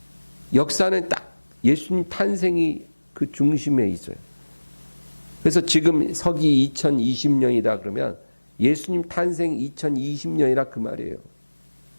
역사는 딱 예수님 탄생이 그 중심에 있어요. 그래서 지금 서기 2020년이다 그러면 예수님 탄생 2020년이라 그 말이에요.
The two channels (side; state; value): both; inverted; correlation -1.00